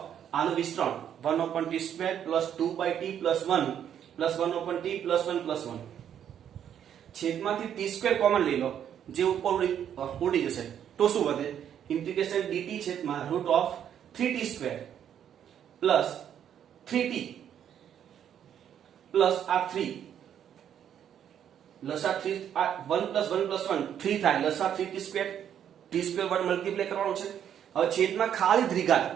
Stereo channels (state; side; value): quieter; left; 9.4 dB